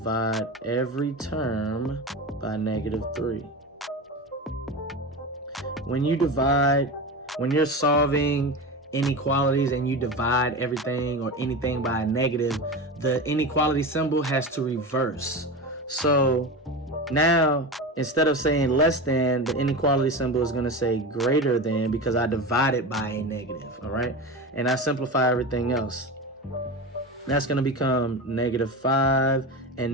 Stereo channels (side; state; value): both; normal; correlation 0.25